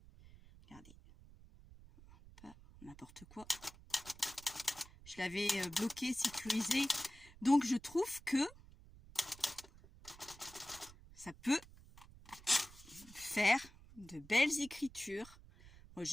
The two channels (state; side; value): noise; right; rumble, 20 dB below the sound